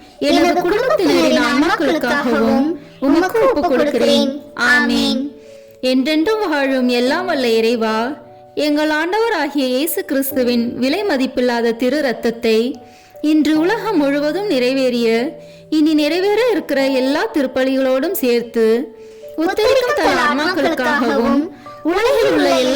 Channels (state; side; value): identical; both; correlation 1.00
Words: எனது குடும்பத்தினரின் ஆன்மாக்களுக்காகவும் உமக்கு ஒப்புக் கொடுக்கிறேன். ஆமேன். என்றென்றும் வாழும் எல்லாம் வல்ல இறைவா, எங்கள் ஆண்டவராகிய இயேசு கிறிஸ்துவின் விலை மதிப்பில்லாத திரு இரத்தத்தை இன்று உலகம் முழுவதும் நிறைவேறிய இனி நிறைவேற இருக்கிற எல்லா திருப்பலிகளோடும் சேர்த்து உத்தரிக்கும் தல ஆன்மாக்களுக்காகவும் உலகில் உள்ள